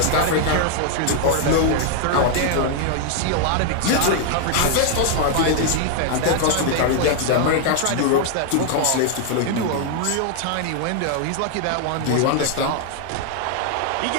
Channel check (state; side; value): different; both; correlation 0.00